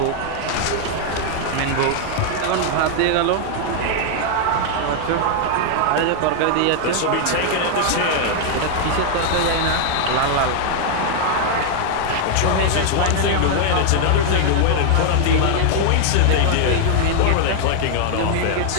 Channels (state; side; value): different; both; correlation 0.00